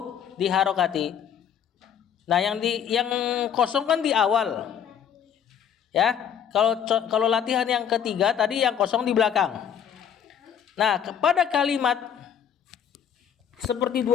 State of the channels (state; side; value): quieter; right; 8.5 dB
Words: diharokati. Nah, yang kosong kan di awal. Ya, kalau latihan yang ketiga tadi yang kosong di belakang. Nah, kepada kalimat seperti